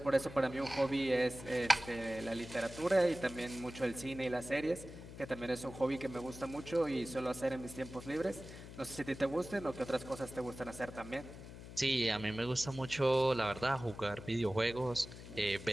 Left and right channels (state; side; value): noise; left; hum, 13 dB below the sound